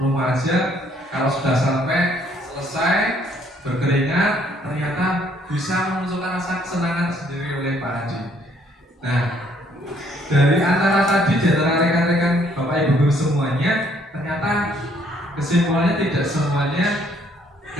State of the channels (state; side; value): normal; both; correlation 0.65